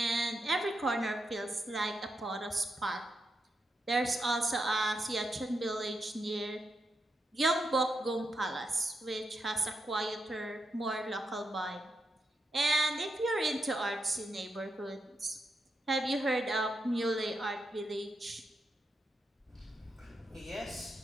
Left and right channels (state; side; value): normal; both; correlation 0.84